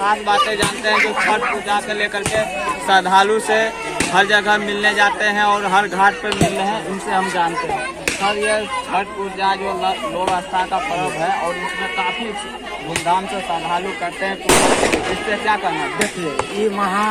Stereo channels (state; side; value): identical; both; correlation 1.00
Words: बातें जानते हैं जो छठ पूजा को लेकर के श्रद्धालु से हर जगह मिलने जाते हैं और हर घाट पर मिल रहे हैं, उनसे हम जानते हैं। सर, ये छठ पूजा जो लोक आस्था का पर्व है और इसमें काफी धूमधाम से श्रद्धालु करते हैं, तो इससे क्या करना है? देखिए, ये महा